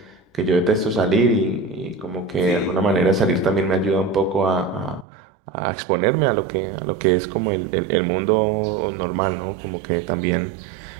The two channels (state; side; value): drops out; left; at 5.1 s